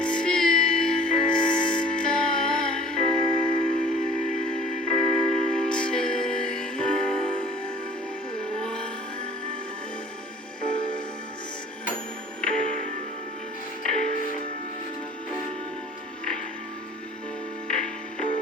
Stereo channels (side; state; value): both; normal; correlation 0.49